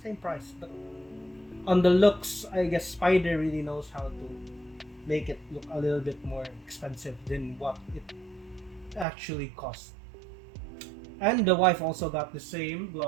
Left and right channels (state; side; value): drops out; left; at 9.1 s